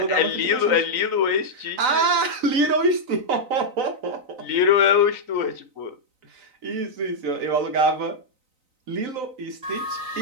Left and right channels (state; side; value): late; left; 3.9 ms